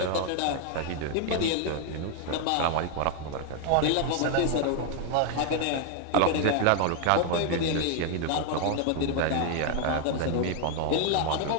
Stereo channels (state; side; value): different; both; correlation 0.00